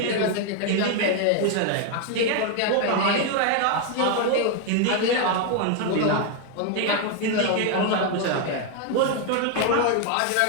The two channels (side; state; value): both; different; correlation 0.01